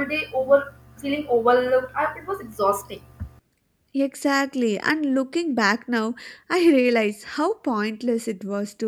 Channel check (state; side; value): identical; both; correlation 1.00